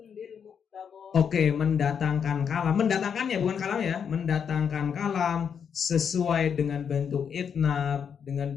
oke, mendatangkan kalam. Mendatangkannya bukan kalam ya. Mendatangkan kalam sesuai dengan bentuk itnab,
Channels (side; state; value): right; quieter; 7.3 dB